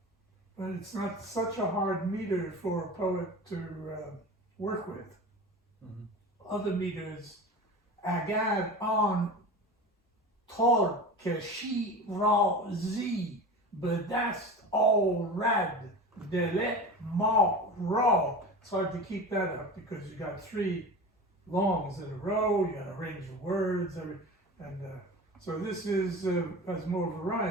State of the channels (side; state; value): both; normal; correlation 0.32